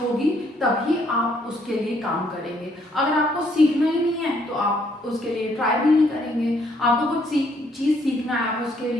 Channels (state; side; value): normal; both; correlation 0.68